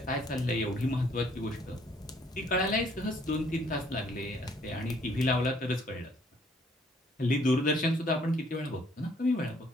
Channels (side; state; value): both; normal; correlation 0.63